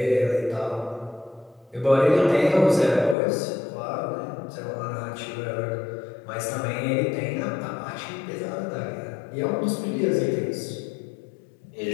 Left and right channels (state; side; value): drops out; right; at 3.2 s